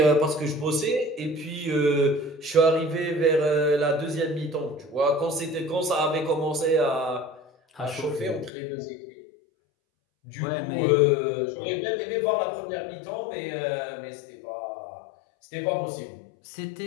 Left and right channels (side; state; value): right; drops out; at 8.5 s